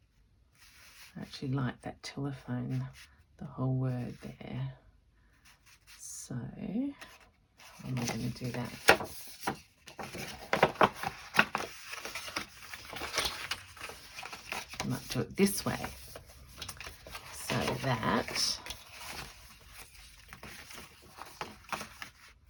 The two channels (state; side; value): identical; both; correlation 1.00